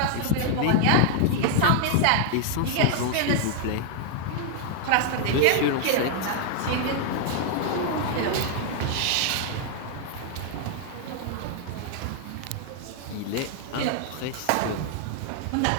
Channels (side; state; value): both; different; correlation 0.00